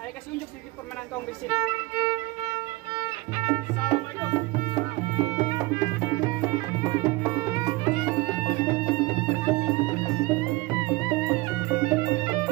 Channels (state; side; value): quieter; left; 22.2 dB